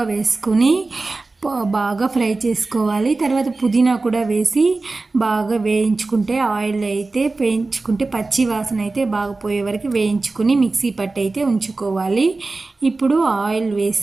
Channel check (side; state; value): left; quieter; 3.5 dB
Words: వేసుకొని బాగా ఫ్రై చేసుకోవాలి. తర్వాత పుదీనా కూడా వేసి బాగా వేయించుకుంటే ఆయిల్ అయితే వేయించుకుంటే పచ్చి వాసన అయితే బాగా పోయే వరకు వేయించుకొని మిక్సీ పట్టి అయితే ఉంచుకోవాలి. ఇప్పుడు ఆయిల్